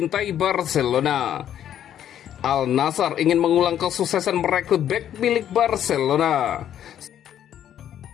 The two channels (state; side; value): quieter; right; 10.4 dB